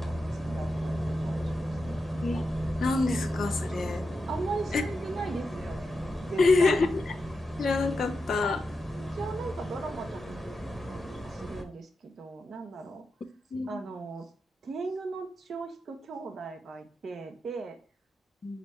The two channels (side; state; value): both; normal; correlation 0.88